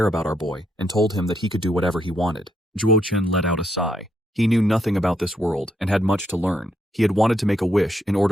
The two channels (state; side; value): normal; both; correlation 0.77